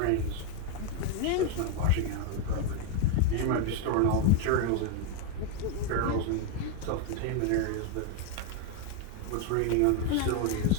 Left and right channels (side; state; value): both; different; correlation 0.01